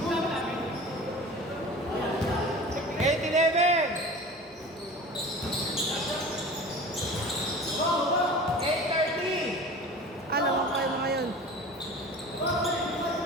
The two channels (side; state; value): both; normal; correlation 0.38